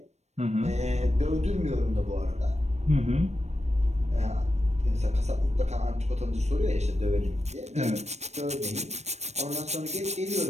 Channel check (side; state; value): left; late; 0.32 ms